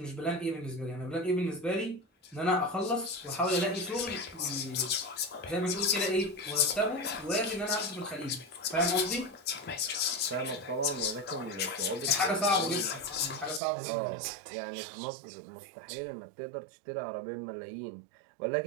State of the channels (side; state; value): left; drops out; at 13.6 s